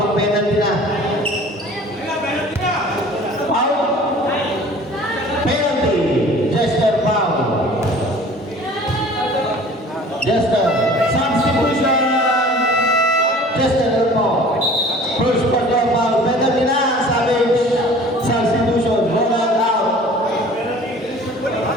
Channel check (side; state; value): both; normal; correlation 0.46